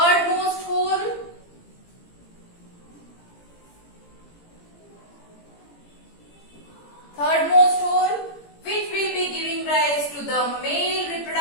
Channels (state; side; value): late; right; 17 ms